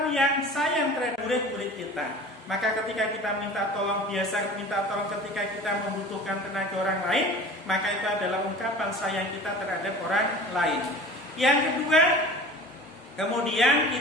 yang sayang terhadap murid-murid kita. Maka ketika kita minta tolong, biasa minta tolong ketika kita membutuhkan tenaga orang lain, maka itu adalah ungkapan sayang kita terhadap orang lain. Yang kedua, kemudian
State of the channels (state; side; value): normal; both; correlation 0.39